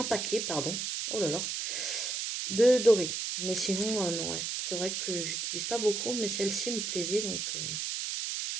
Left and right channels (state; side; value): noise; right; hiss, 2 dB below the sound